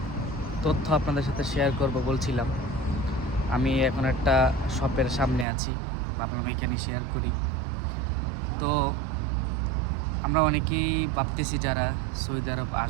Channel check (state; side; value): drops out; left; at 5.5 s